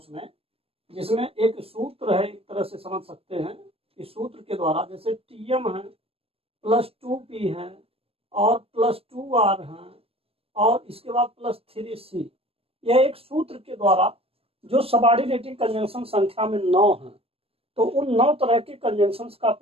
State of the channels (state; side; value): late; left; 0.28 ms